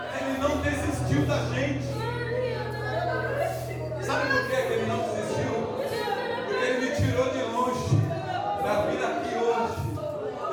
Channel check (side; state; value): both; identical; correlation 1.00